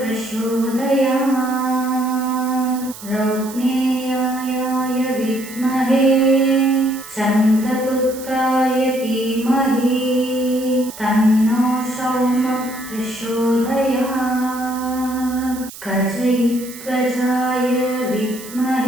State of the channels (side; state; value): right; noise; hiss, 15 dB below the sound